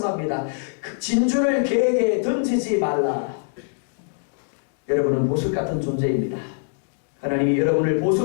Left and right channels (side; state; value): right; silent; digital silence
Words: 진주를 개에게 던지지 말라. 여러분은 보석 같은 존재입니다. 하나님이 여러분을